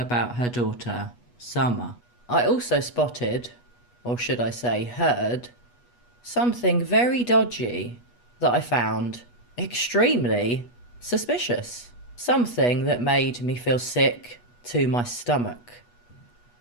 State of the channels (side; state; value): right; late; 8.3 ms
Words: her daughter, Summer? I also spotted, or should I say heard, something very dodgy that I found extremely suspicious. Something that made me feel sick to my stomach.